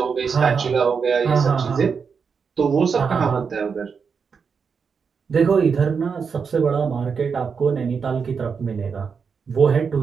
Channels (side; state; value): left; quieter; 5.9 dB